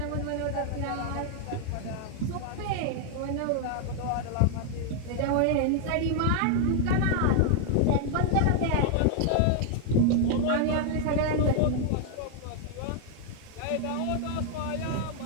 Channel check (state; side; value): different; both; correlation 0.00